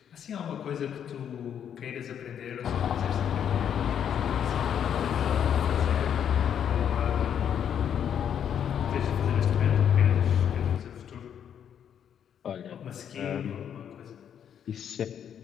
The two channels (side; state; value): right; quieter; 8.8 dB